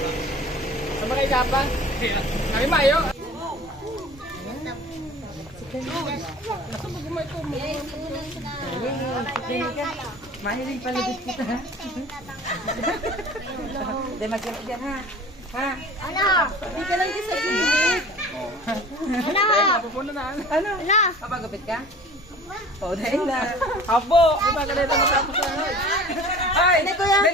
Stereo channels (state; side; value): normal; both; correlation 0.43